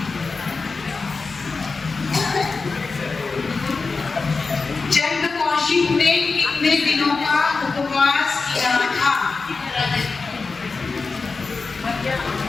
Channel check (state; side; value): quieter; right; 4.3 dB